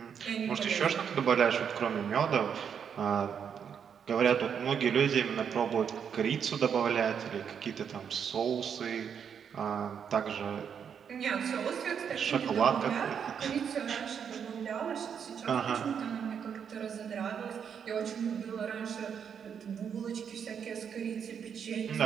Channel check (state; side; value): quieter; left; 7.5 dB